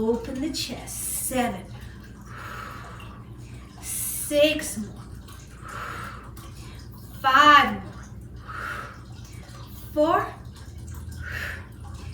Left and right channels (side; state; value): both; identical; correlation 1.00